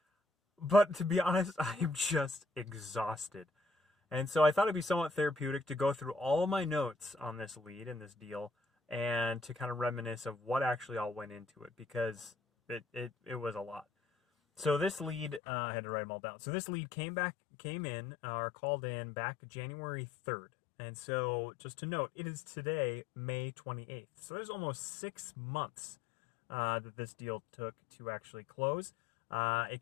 But to be honest, I'm just exhausted. And so I thought it'd be somewhat therapeutic to go through all my notes on this lead and this deal and to kind of reminisce of what actually all went into it because it was a lot. So this lead, I had to write them all down. So this lead came in, or called in back January 3rd. And so just to note, it is today, May 28th. So there's almost 6 months that this deal took to actually close. It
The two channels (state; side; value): drops out; right; at 15.4 s